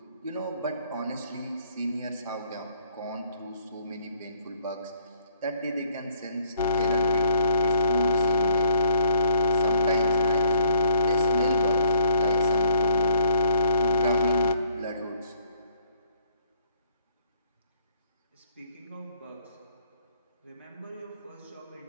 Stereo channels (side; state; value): both; inverted; correlation -0.65